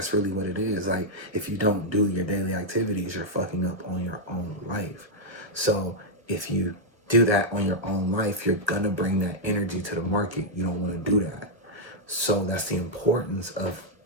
really what it is. Like, if you don't do your daily activities, you're fucking up on your own life. So if you do that on your own life, you're gonna bring that energy to the market. You don't want to do that. So that's the importance of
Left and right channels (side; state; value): left; late; 1.3 ms